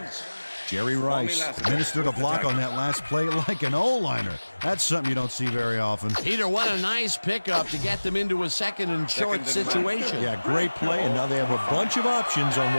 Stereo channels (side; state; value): both; inverted; correlation -1.00